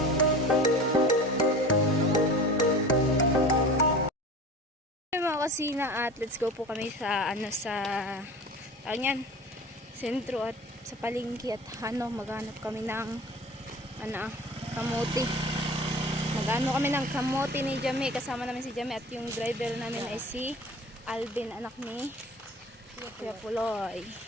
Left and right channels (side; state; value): both; normal; correlation 0.38